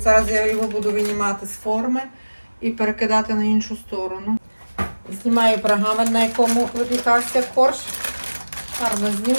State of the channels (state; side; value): inverted; both; correlation -1.00